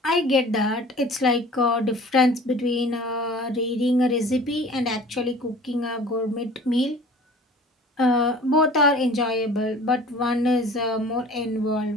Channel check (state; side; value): normal; both; correlation 0.45